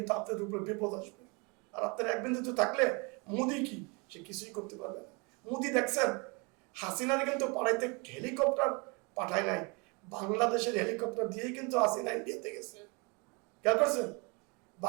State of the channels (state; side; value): quieter; left; 30.5 dB